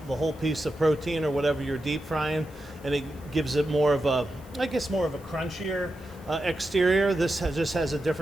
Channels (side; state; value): right; noise; hiss, 27 dB below the sound